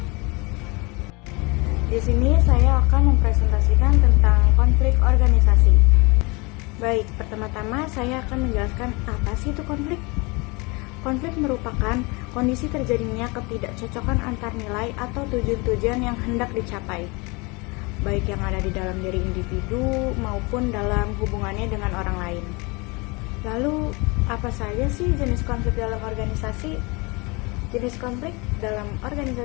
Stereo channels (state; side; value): quieter; right; 27.4 dB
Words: Di sini saya akan mempresentasikan tentang konflik organisasi. Baik, pertama-tama saya akan menjelaskan apa sih itu konflik. Konflik merupakan kondisi terjadinya ketidakcocokan antar nilai atau tujuan-tujuan yang hendak dicapai, baik yang ada di dalam diri individu maupun dalam hubungannya dengan orang lain. Lalu, apa saja sih jenis konflik dalam organisasi? Jenis konflik dalam